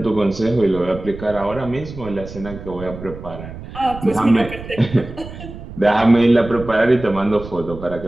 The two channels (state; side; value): noise; right; rumble, 13 dB below the sound